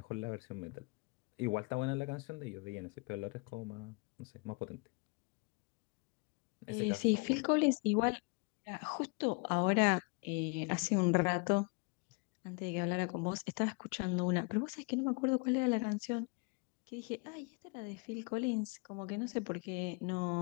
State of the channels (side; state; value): right; quieter; 32.0 dB